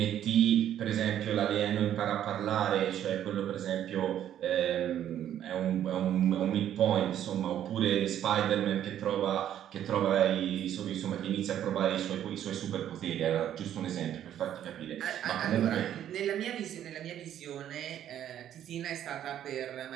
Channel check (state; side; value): quieter; left; 10.8 dB